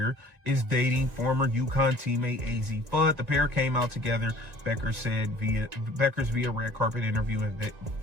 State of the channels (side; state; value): left; late; 1.9 ms